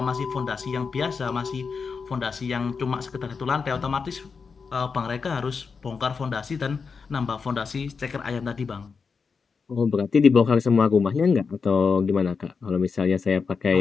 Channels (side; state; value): right; quieter; 5.3 dB